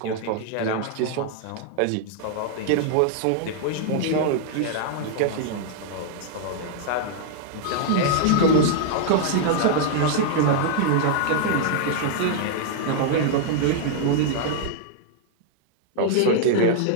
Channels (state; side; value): different; both; correlation -0.01